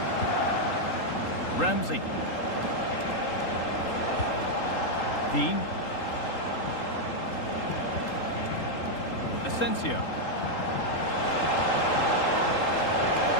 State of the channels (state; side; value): late; right; 3.8 ms